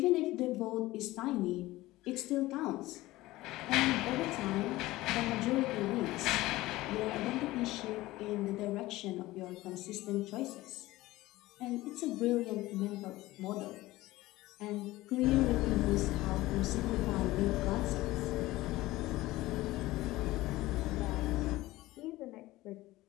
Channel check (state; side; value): quieter; right; 18.0 dB